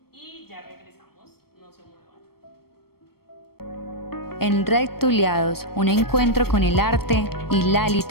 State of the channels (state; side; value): late; right; 0.94 ms